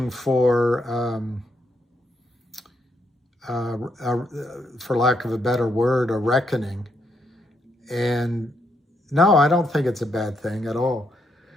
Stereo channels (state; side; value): normal; both; correlation 0.77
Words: for lack of a better word, a reckoning. And no, I don't think it's a bad thing at all.